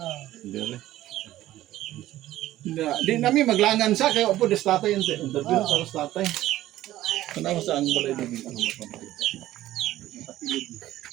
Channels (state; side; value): quieter; left; 14.6 dB